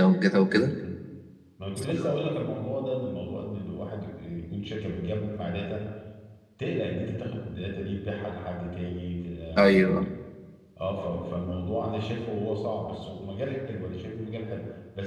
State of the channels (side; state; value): both; identical; correlation 1.00